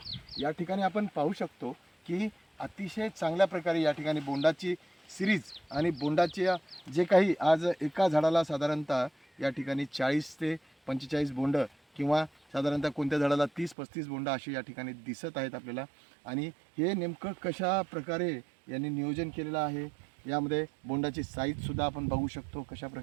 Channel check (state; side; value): drops out; left; at 13.8 s